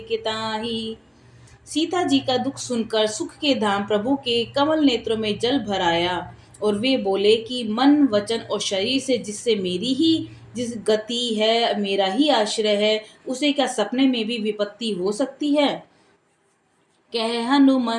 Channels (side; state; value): both; identical; correlation 1.00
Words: के ताहि। सीता जी का दुख सुनकर सुख के धाम प्रभु के कमल नेत्रों में जल भर आया और वे बोले कि मन वचन और शरीर से जिससे मेरी ही जिस गति है, मेरा ही आश्रय है, उसे क्या सपने में भी विपत्ति हो सकती है। कह